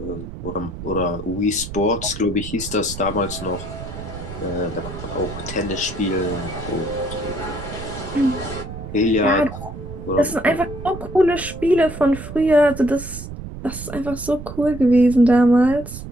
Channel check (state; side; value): noise; right; rumble, 10 dB below the sound